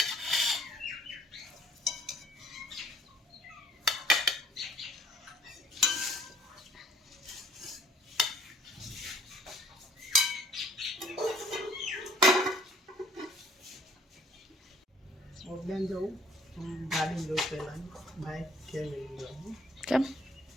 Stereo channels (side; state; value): both; normal; correlation 0.59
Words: બેન જવું ગાડી જવું પહેલા બાઇક કે લઈ જવું કેમ